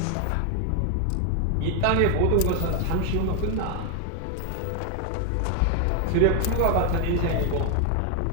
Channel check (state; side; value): different; both; correlation 0.01